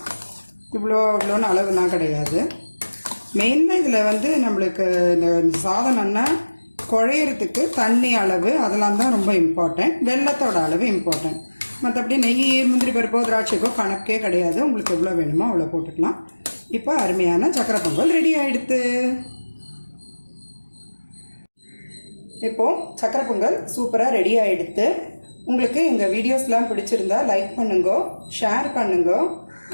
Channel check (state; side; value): inverted; both; correlation -1.00